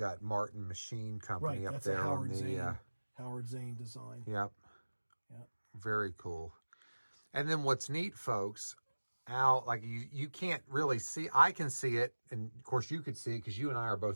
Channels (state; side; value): inverted; both; correlation -1.00